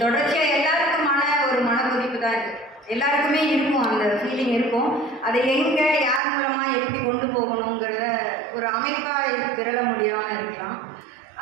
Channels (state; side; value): drops out; left; at 6.2 s